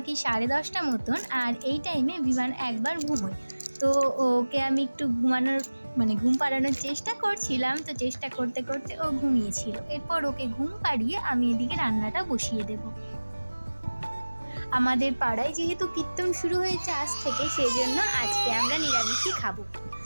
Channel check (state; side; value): inverted; both; correlation -1.00